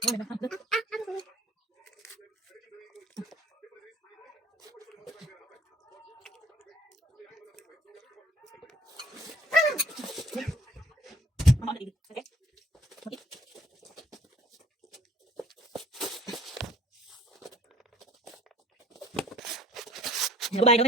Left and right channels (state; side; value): normal; both; correlation 0.56